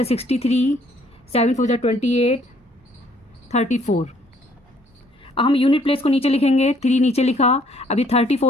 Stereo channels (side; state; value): both; normal; correlation 0.63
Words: 63, 7 4 28 34। अब हम यूनिट प्लेस को नीचे लिखेंगे, 3 नीचे लिखा, अभी